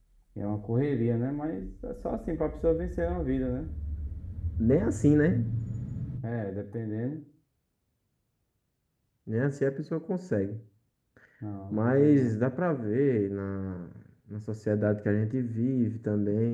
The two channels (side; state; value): both; identical; correlation 1.00